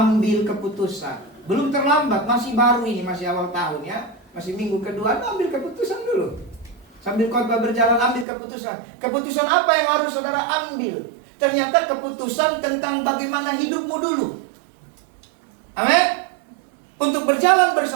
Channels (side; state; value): left; drops out; at 8.2 s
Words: keputusan. Belum terlambat, masih baru ini, masih awal tahun ya. Masih minggu kedua, ambil keputusan dulu. Sambil khotbah berjalan, ambil keputusan. Keputusan apa yang harus saudara ambil? Ternyata keputusan tentang bagaimana hidupmu dulu. Amin. Untuk berjalan